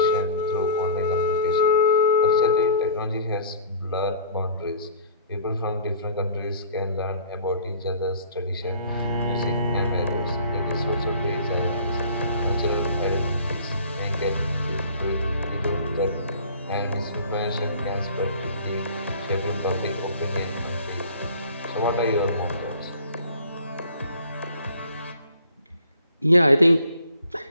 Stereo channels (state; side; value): inverted; both; correlation -0.47